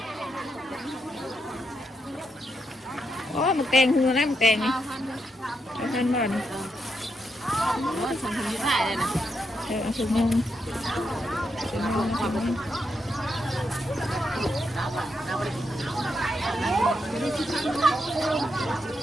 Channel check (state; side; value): normal; both; correlation 0.82